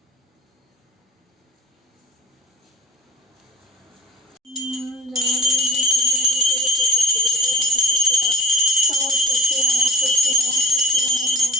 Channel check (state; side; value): normal; both; correlation 0.40